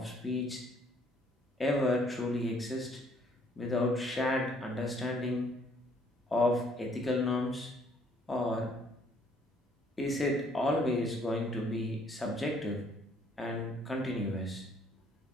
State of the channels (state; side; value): normal; both; correlation 0.63